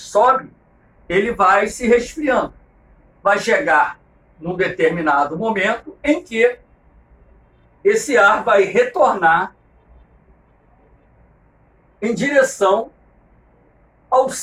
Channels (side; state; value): both; identical; correlation 1.00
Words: ele vai se resfriando. Vai chegar num determinado momento em que esse ar vai retornar em direção ao